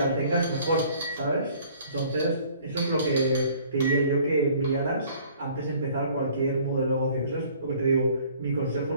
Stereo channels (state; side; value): inverted; both; correlation -0.55